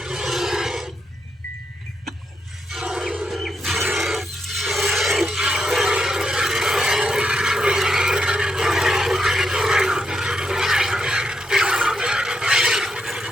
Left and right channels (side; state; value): both; normal; correlation 0.81